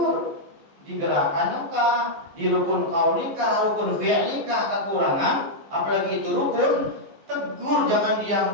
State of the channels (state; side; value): late; left; 14 ms